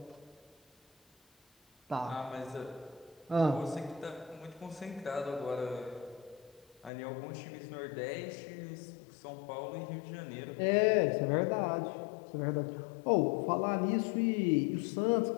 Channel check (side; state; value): right; drops out; at 6.9 s